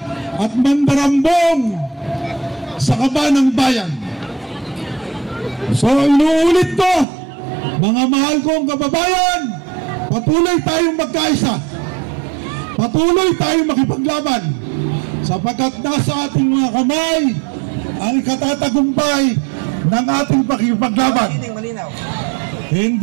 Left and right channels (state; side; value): drops out; left; at 7.1 s